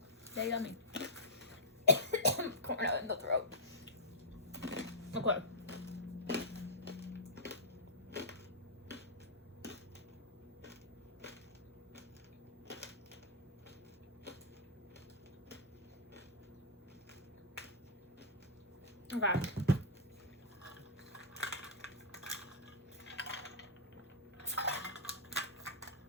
They're yummy. Corn nut in the throat. Okay. Okay.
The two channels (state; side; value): normal; both; correlation -0.13